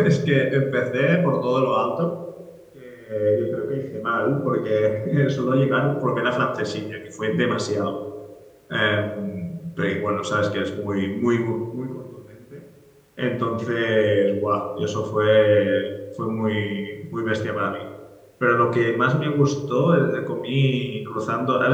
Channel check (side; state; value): both; identical; correlation 1.00